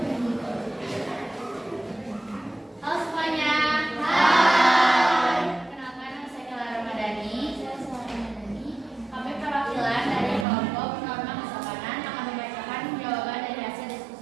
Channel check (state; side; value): drops out; left; at 10.5 s